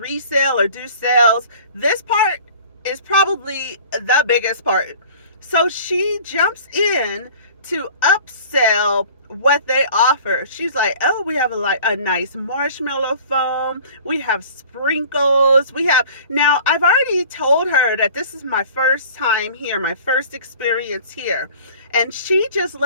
or do sales. This part is probably the biggest part. So she jumps in to upsell what they offer. She's like, oh, we have a nice marshmallow foam. We have sprinkles. Now I've already told her that this is my first time here, my first experience here. And she just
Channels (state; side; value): inverted; both; correlation -0.46